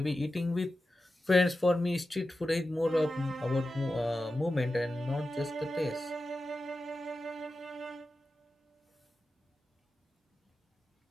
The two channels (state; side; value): normal; both; correlation 0.92